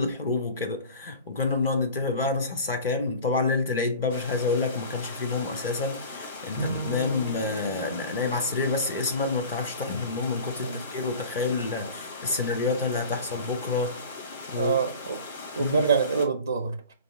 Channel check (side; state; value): both; inverted; correlation -0.39